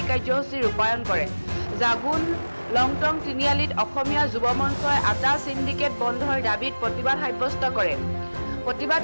কাৰ্যসূচী ৰূপায়ণ কৰে। জাগুন লংটং তিনিআলিত অসমীয়া যুৱ মঞ্চই আটা সিন্ডিকেট বন্ধৰ দাবীত প্ৰতিবাদ সাব্যস্ত কৰে।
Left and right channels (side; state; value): both; inverted; correlation -1.00